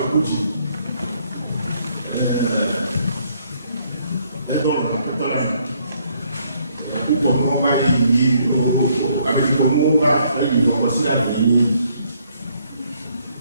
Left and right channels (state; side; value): inverted; both; correlation -0.68